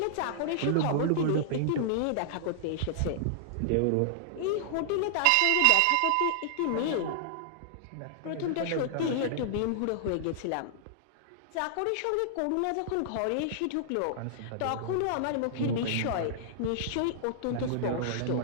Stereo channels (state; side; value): different; both; correlation -0.01